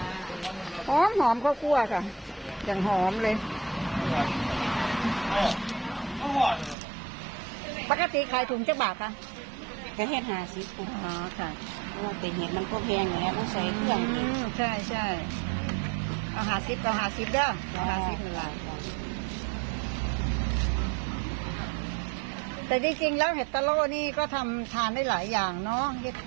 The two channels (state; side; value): drops out; left; at 6.8 s